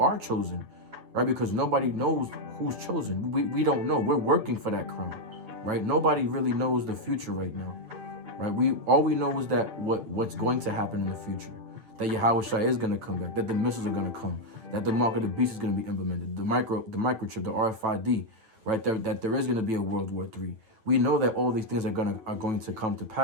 chosen, right? Because nobody knows who's chosen. We don't know. We're working for that crown, right? Nobody really knows the future right now, right? All we know is that what's going to happen in the future, that Yahweh Shai is going to come back, that the missiles are going to come, that the mark of the beast is going to be implemented, the microchip, the RFID, right? That there is going to be a World War III. We know that all these things are going to come to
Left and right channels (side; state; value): left; late; 8.8 ms